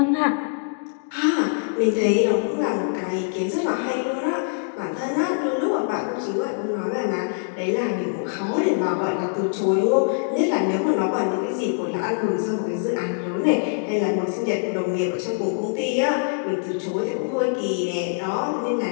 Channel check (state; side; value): silent; right; digital silence